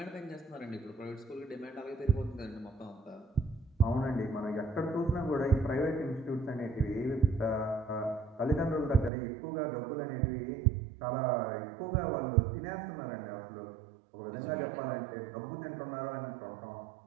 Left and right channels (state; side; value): drops out; left; at 9.1 s